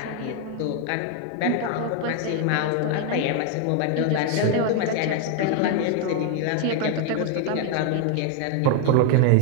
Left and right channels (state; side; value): different; both; correlation 0.01